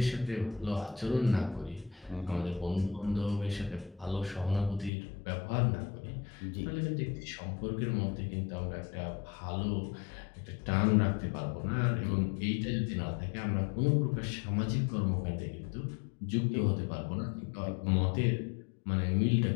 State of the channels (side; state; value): right; drops out; at 4.9 s